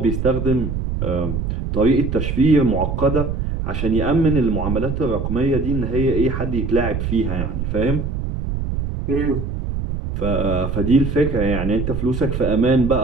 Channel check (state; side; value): noise; right; rumble, 3 dB below the sound